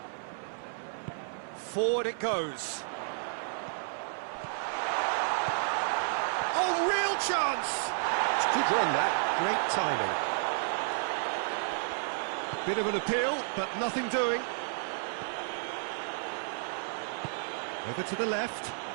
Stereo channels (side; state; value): left; silent; 57 dB below the other